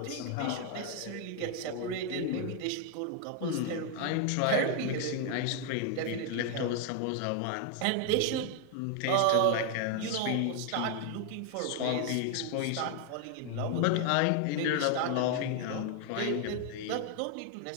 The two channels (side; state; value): both; different; correlation 0.00